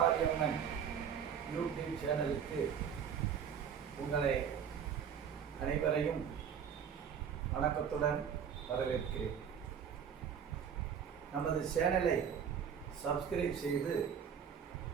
YouTube சேனலுக்கு உங்களை அனைவரையும் வணக்கத்துடன் வரவேற்கிறேன். நமது சேனலை சப்ஸ்கிரைப் செய்து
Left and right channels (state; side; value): quieter; left; 7.8 dB